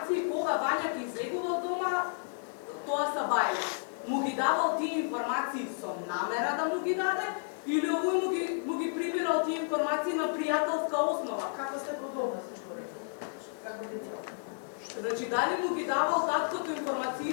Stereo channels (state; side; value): silent; right; digital silence